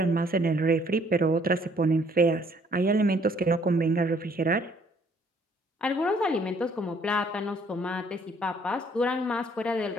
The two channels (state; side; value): normal; both; correlation 0.62